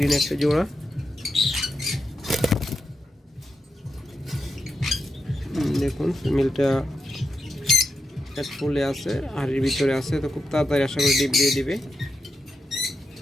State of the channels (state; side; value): normal; both; correlation 0.86